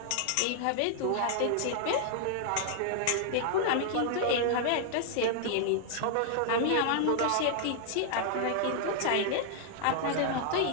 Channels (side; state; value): both; different; correlation -0.01